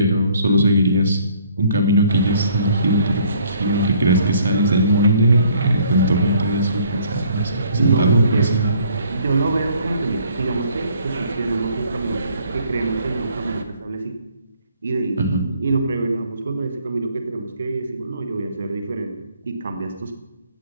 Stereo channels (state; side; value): inverted; both; correlation -0.61